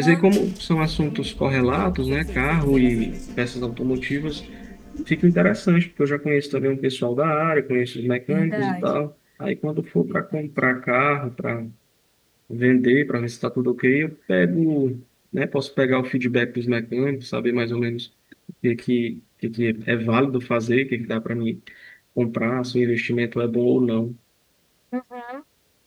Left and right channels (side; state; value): both; identical; correlation 1.00